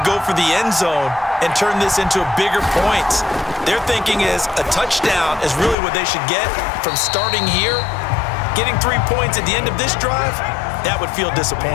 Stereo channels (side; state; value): right; drops out; at 5.8 s